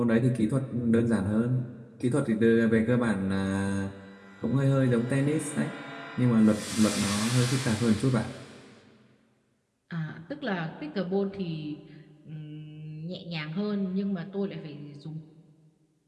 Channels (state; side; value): identical; both; correlation 1.00